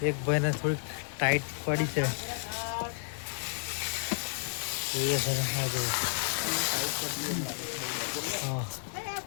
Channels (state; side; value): silent; right; digital silence